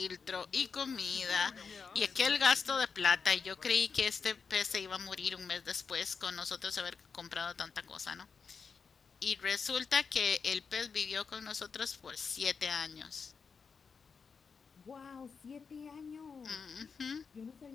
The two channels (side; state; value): right; quieter; 5.6 dB